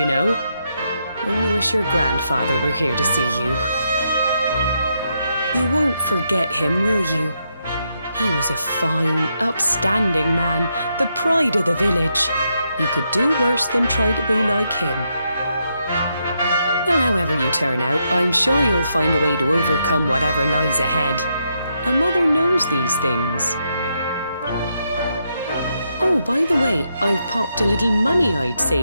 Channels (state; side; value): inverted; both; correlation -0.81